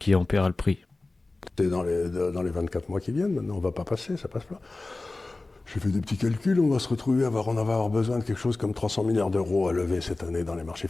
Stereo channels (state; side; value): quieter; right; 3.2 dB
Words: en paiera le prix. C'est dans les 24 mois qui viennent, maintenant on ne va pas passer, ça passe pas. J'ai fait des petits calculs, on va se retrouver à avoir besoin de quelque chose comme 300 milliards d'euros à lever cette année dans les marchés